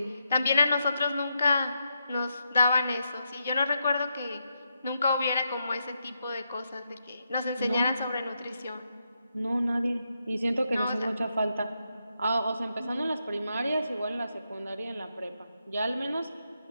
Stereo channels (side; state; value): both; inverted; correlation -0.83